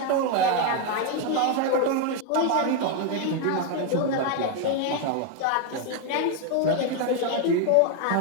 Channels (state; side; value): different; both; correlation 0.01